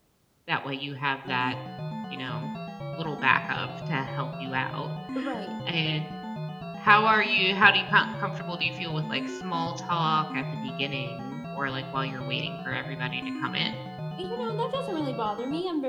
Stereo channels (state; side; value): identical; both; correlation 1.00